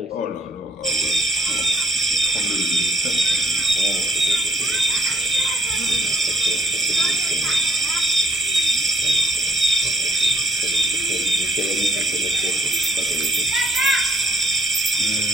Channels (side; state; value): both; normal; correlation 0.68